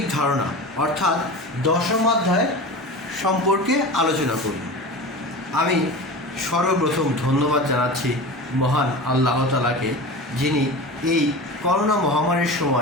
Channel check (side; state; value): both; normal; correlation 0.31